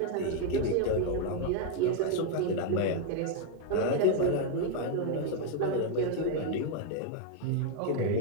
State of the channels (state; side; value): different; both; correlation 0.00